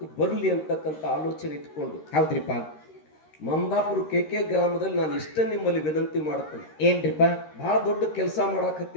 ಬರ್ಲಿ ಅಂತಕ್ಕಂತ ಆಲೋಚನೆ ಇಟ್ಕೊಂಡು. ಹೌದ್ರಿಪ್ಪ. ಮಮದಾಪುರ KK ಗ್ರಾಮದಲ್ಲಿ ನಾನು ಇಷ್ಟ ನಿಮ್ಮಲ್ಲಿ ವಿನಂತಿ ಮಾಡ್ತೇನೆ. ಏನ್ರಿಪ್ಪ? ಬಹಳ ದೊಡ್ಡ ಕೆಲಸ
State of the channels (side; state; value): right; late; 13 ms